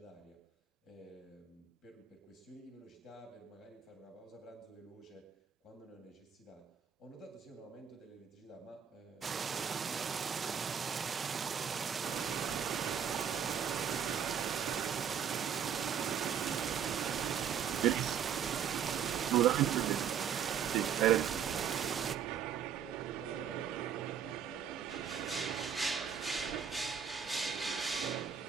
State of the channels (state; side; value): quieter; left; 8.1 dB